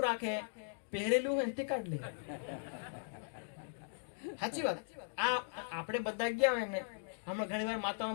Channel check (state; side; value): silent; right; digital silence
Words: રાખે? પહેરેલું હોય તે કાઢ લે. સાચી વાત. આ આપણે બધા ગયા હોય ને, હમણાં ઘણી વાર